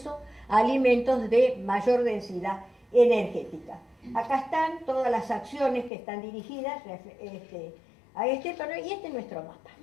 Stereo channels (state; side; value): drops out; right; at 5.9 s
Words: a alimentos de mayor densidad energética. Acá están todas las acciones que están dirigidas a este torneo, y este es nuestro mapa.